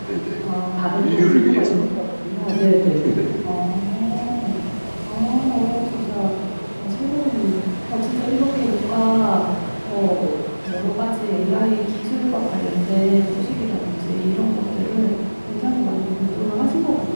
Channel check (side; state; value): both; inverted; correlation -1.00